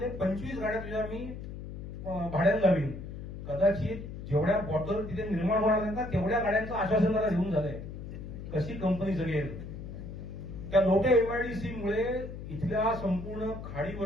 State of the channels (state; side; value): noise; left; hum, 9 dB below the sound